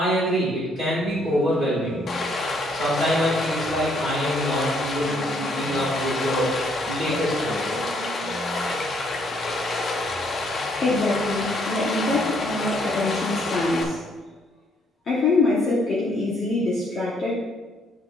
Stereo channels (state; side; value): normal; both; correlation 0.68